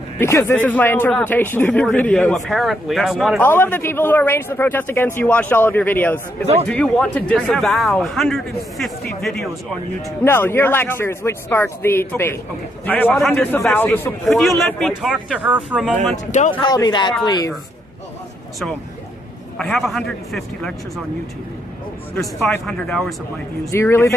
Because this is my interpretation of your videos. Apparently, all of the people who arranged the protest against you watched all of your videos. It's like, do you want to disavow? I have 150 videos on YouTube. No, your lectures, which sparked the debate. Okay. Do you want to disavow the support? Could you let me talk to her for a moment? Don't call me that, please. So, I have 150 lectures on YouTube. There's 500 hours of my views. Do you really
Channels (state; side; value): normal; both; correlation 0.76